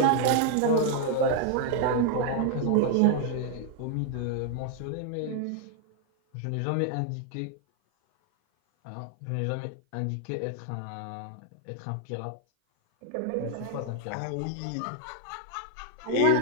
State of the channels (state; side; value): different; both; correlation 0.00